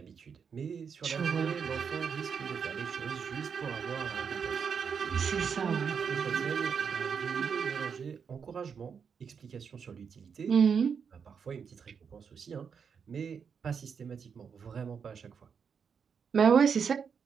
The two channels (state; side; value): quieter; left; 6.5 dB